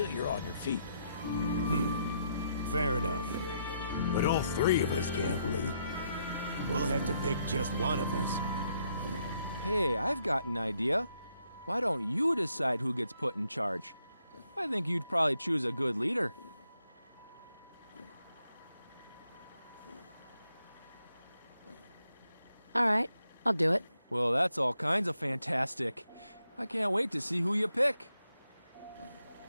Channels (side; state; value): both; inverted; correlation -0.76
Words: you're on your feet. Fair enough. But all three of us can't lead. We'll have to pick just one of us. Hey, I've got an idea. Why don't you decide who gets put in charge? I think you'd probably choose a good leader. All right, I'll do it. Well, that's all kinds of fantastic. I can't wait to see who you pick.